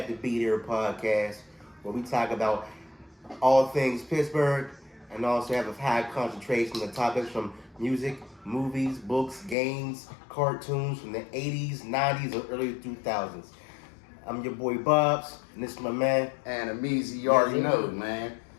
to Be There podcast, where we talk about all things Pittsburgh and also have a high concentration of topics from music, movies, books, games, cartoons from the 80s, 90s, or early 2000s. I'm your boy Bubs, and this is my man. Animeezy, you already know, man.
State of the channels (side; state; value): right; drops out; at 9.6 s